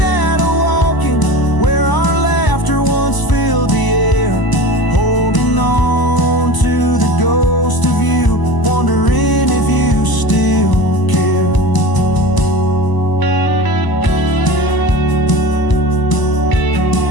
walking where our laughter once filled the air, holding on to the ghost of you, wondering if you still care.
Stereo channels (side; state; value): right; late; 1.0 ms